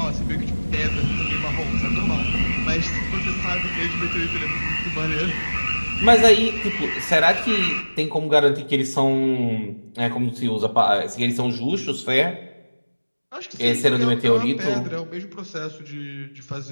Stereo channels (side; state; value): both; inverted; correlation -1.00